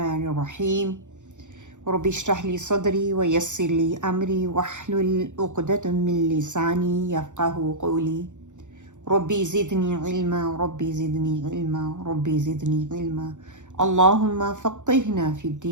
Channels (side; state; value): left; late; 0.85 ms